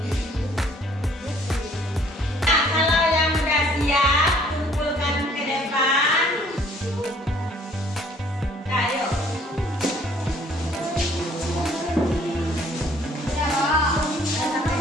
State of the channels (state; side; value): normal; both; correlation 0.59